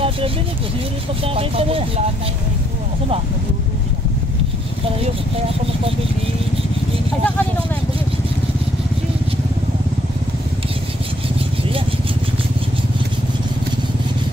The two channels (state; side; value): normal; both; correlation 0.70